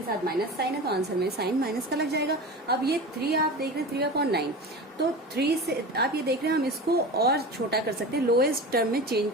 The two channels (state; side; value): normal; both; correlation 0.31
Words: साथ माइनस साइन है तो आंसर में साइन माइनस का लग जाएगा। अब ये 3 आप देख रहे हैं 3/9, तो 3 से आप ये देख रहे हैं हम इसको और छोटा कर सकते हैं, लोएस्ट टर्म में चेंज